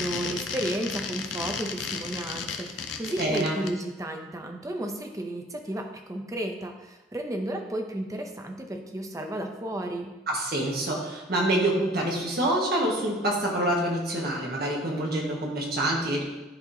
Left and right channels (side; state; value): both; normal; correlation 0.50